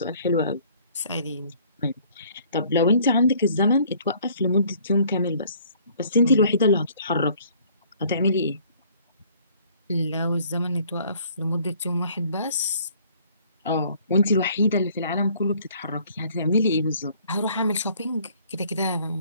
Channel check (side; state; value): both; inverted; correlation -0.58